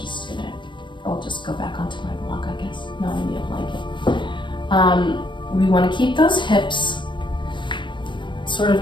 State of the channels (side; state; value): right; late; 0.23 ms